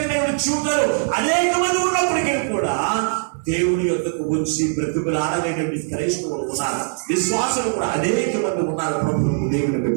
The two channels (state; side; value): silent; left; 65 dB below the other